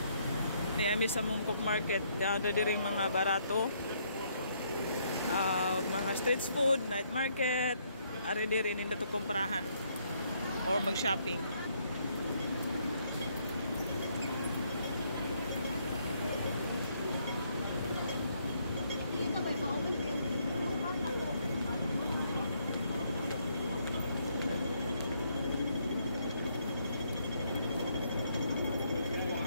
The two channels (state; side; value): inverted; both; correlation -0.71